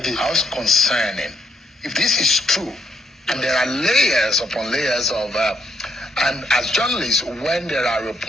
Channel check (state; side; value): normal; both; correlation 0.75